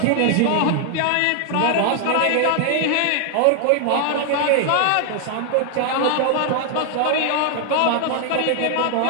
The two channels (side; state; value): both; different; correlation 0.00